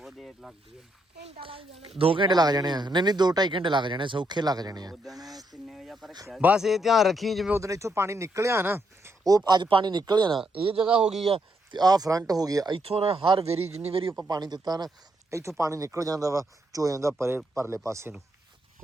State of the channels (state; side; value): normal; both; correlation 0.77